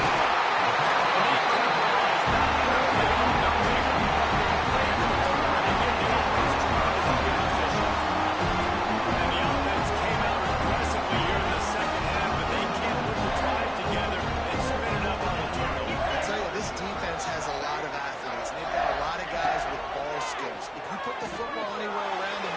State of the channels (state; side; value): identical; both; correlation 1.00